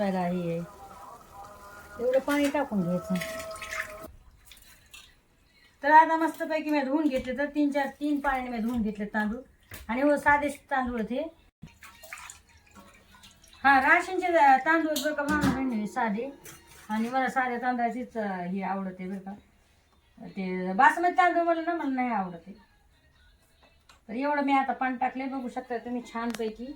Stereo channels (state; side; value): identical; both; correlation 1.00